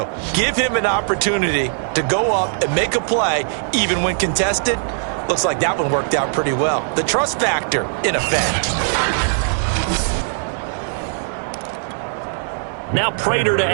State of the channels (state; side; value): silent; left; 66 dB below the other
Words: Give him an opportunity to go up and make a play, even when contested. Looks like that one worked out pretty well. The trust factor in effect. Now Prater to